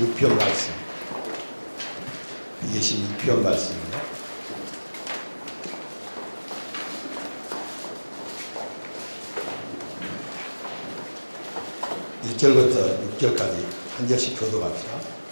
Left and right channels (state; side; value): inverted; both; correlation -1.00